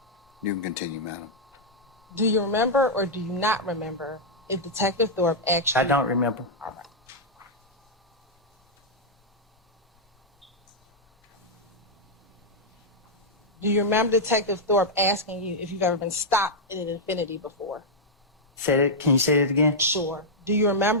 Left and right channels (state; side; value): normal; both; correlation -0.06